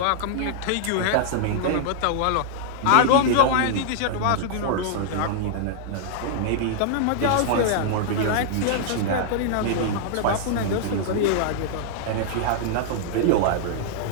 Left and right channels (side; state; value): both; different; correlation -0.01